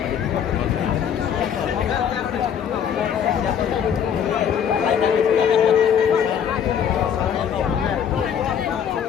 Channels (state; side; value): quieter; right; 8.3 dB